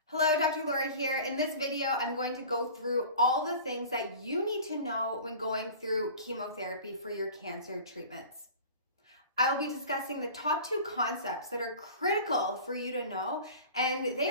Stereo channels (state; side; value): inverted; both; correlation -0.40